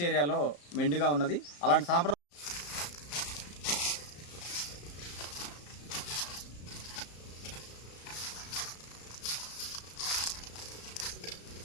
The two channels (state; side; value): late; right; 34 ms